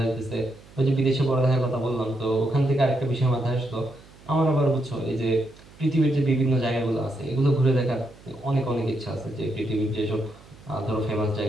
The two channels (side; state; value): right; noise; hum, 23 dB below the sound